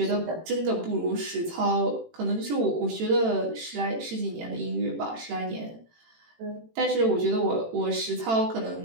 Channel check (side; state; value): left; late; 18 ms